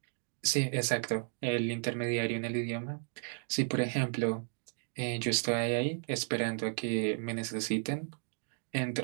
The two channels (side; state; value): left; silent; digital silence